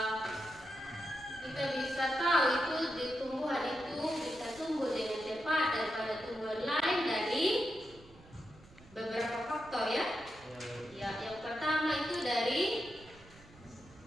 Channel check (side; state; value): right; noise; rumble, 23 dB below the sound